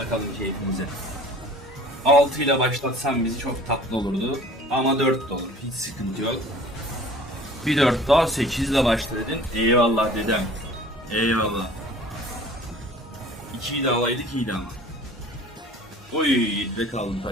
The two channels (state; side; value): normal; both; correlation 0.47